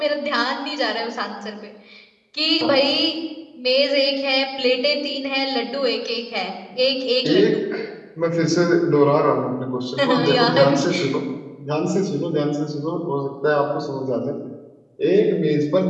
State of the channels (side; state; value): both; identical; correlation 1.00